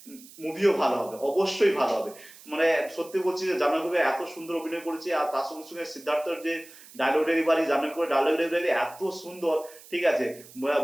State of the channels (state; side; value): noise; right; hiss, 20 dB below the sound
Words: মুভিও ভালো হবে, অবশ্যই ভালো হবে। মানে সত্যি বলছি যে জাহ্নবী কবির এত সুন্দর অভিনয় করেছে, আর তার সঙ্গে সঙ্গে সিদ্ধার্থর যে ডায়লগ ডেলিভারি, জাহ্নবী কবির ডায়লগ ডেলিভারি এত সুন্দর। ঠিক আছে,